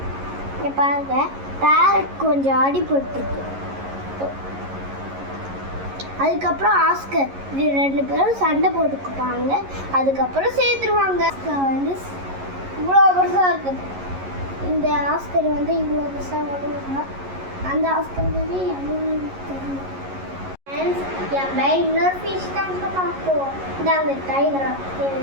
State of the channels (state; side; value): late; left; 11 ms